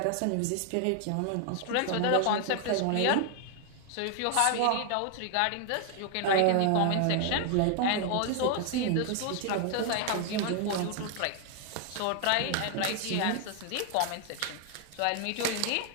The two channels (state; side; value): different; both; correlation 0.00